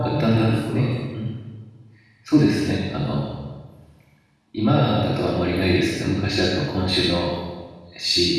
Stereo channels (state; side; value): identical; both; correlation 1.00